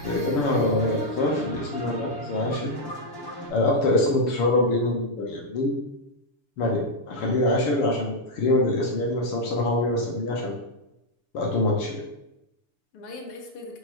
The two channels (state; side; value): late; right; 6.8 ms